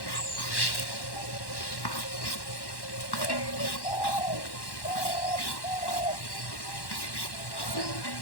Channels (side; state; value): right; late; 1.1 ms